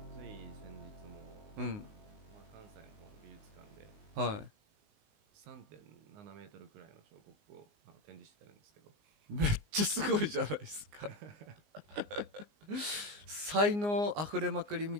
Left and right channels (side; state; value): left; late; 19 ms